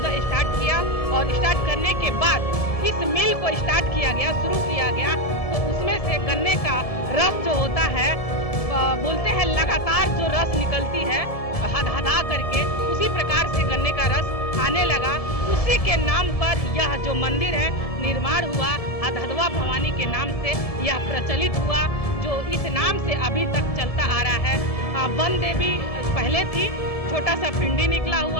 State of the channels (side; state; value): right; late; 1.7 ms